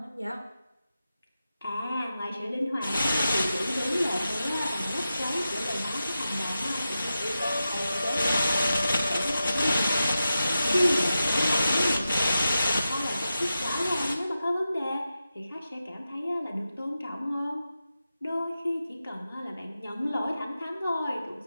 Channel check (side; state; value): both; inverted; correlation -0.91